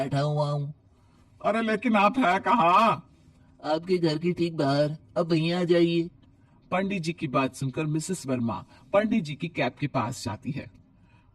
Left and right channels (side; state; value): both; identical; correlation 1.00